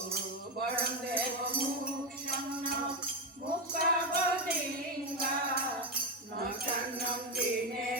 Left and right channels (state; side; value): normal; both; correlation 0.10